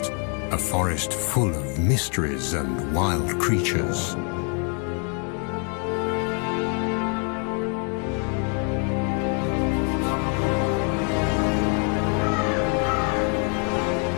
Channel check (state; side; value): quieter; right; 39.2 dB